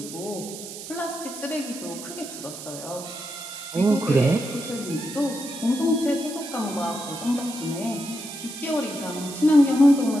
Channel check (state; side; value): noise; right; hiss, 11 dB below the sound